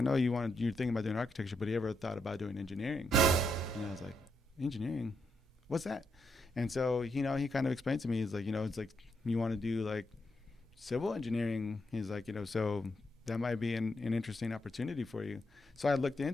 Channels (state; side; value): normal; both; correlation 0.80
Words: know you're thinking about doing architecture, but you ever thought about doing engineering? And I was like, engineering? What's that? And so, he kind of explained to me, he's like, it's like, you want to do like civil engineering? He's like, so that might be an interesting opportunity for you. So I looked